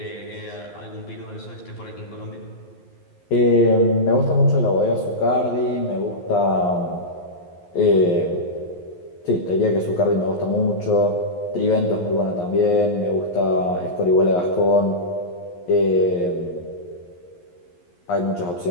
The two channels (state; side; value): late; right; 11 ms